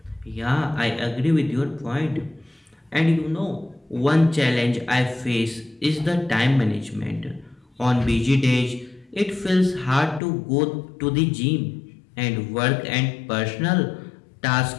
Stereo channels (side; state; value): right; drops out; at 10.2 s